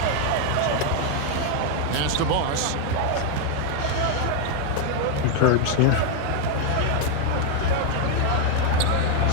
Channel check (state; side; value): different; both; correlation 0.01